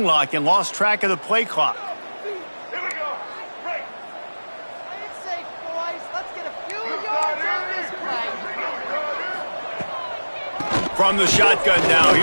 lock and lost track of the play clock. Here we go. Break. Play it safe, boys. Let's get a few yards on this play. From the shotgun now,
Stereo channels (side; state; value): both; inverted; correlation -1.00